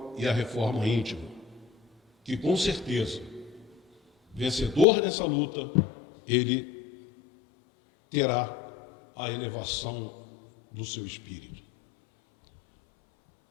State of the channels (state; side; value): drops out; right; at 4.9 s